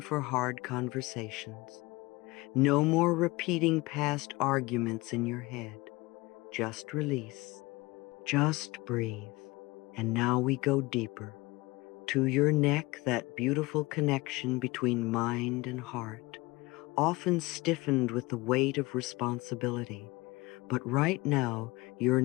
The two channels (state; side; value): quieter; right; 22.2 dB